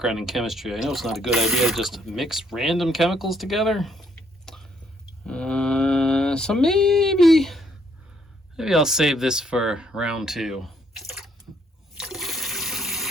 in chemistry, I know it's not a good idea to just mix random chemicals together. So maybe I'll save this for round 2.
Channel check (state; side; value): normal; both; correlation 0.69